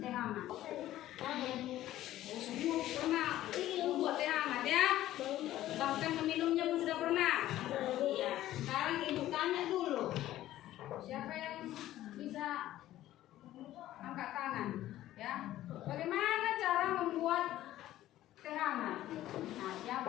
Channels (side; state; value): right; quieter; 14.1 dB